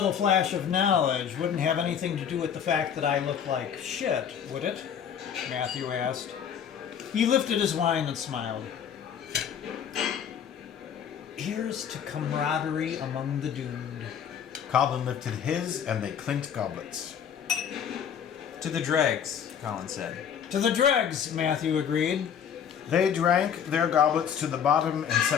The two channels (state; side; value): quieter; right; 8.2 dB